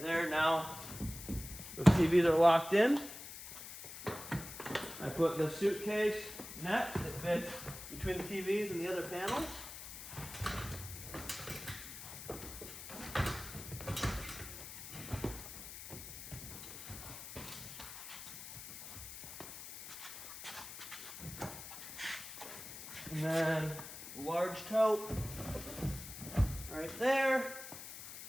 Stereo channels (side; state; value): left; noise; hiss, 11 dB below the sound